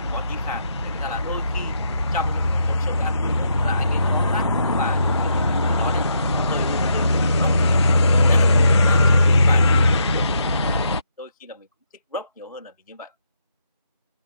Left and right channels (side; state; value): both; inverted; correlation -0.79